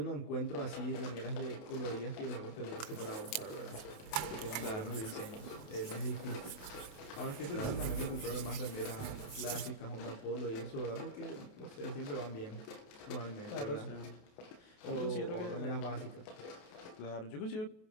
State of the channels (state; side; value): late; right; 27 ms